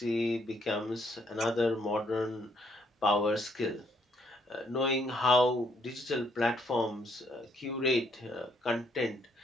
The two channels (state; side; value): normal; both; correlation 0.70